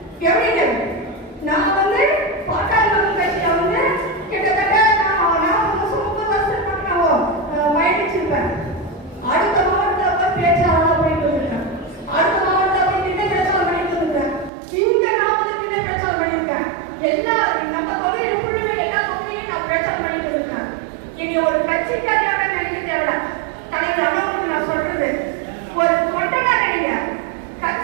எப்படி நான் வந்து பாட்டாளி மக்கள் கட்சியில வந்து கிட்டத்தட்ட நான் 30 வருஷம் நான் பயணிச்சிருப்பேன். அடுத்த மாவட்டத்தில் போய் பேச்சாளர் போயிட்டு வந்திருக்கேன். அடுத்த மாவட்டத்தில் போய் நின்று பேச்சாளர் பண்ணிட்டு வந்திருக்கேன். இங்க நான் வந்து நின்று பேச்சாளர் பண்ணியிருக்கேன். எல்லா நம்ம பகுதியில் புள்ளில எல்லா பகுதியும் நான் பேச்சாளர் பண்ணிட்டு வந்திருக்கேன். இனி ஒரு கட்சிக்காரியாக நினைக்க தேவை. தலைவர் அண்ணாவுக்கு நான் சொல்றது ஒரு கொண்டனா நினைங்க.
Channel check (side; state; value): left; drops out; at 14.5 s